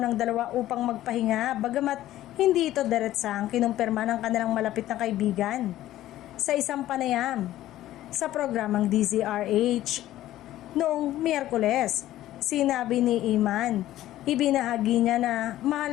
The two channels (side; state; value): right; quieter; 14.1 dB